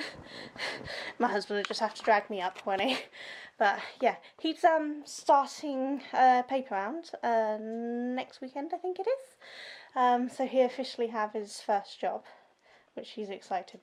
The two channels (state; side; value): identical; both; correlation 1.00